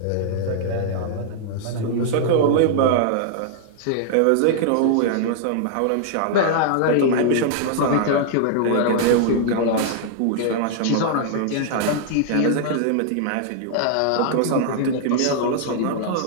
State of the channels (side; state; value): both; different; correlation -0.01